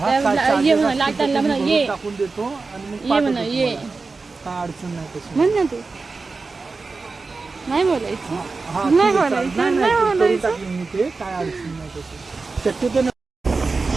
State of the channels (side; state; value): left; quieter; 4.1 dB